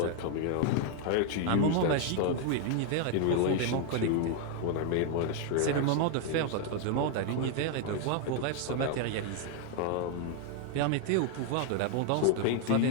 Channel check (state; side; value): different; both; correlation 0.00